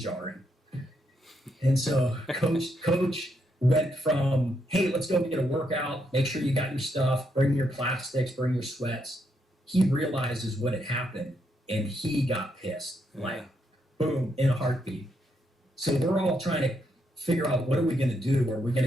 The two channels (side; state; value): both; normal; correlation 0.78